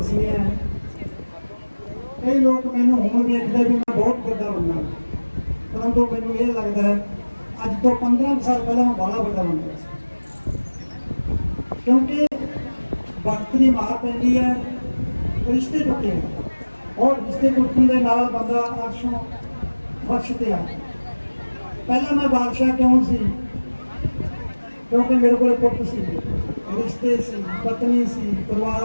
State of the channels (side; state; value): both; inverted; correlation -1.00